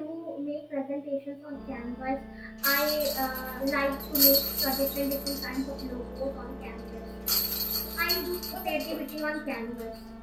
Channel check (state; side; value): identical; both; correlation 1.00